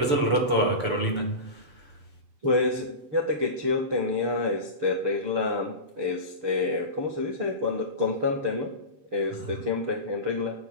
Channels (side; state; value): left; late; 6.8 ms